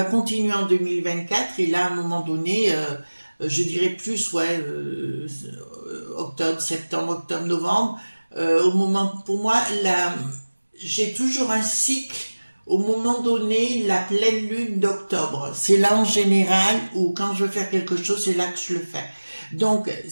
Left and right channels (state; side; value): inverted; both; correlation -1.00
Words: continuer en 2024. Et là, à un moment donné, je dirais plus, ouais, octobre, novembre. Pour moi, j'ai toujours un cycle. Au moment donné, la pleine lune d'octobre, c'est là en général où quand je veux faire quelque chose, c'est là que je le fais. Donc,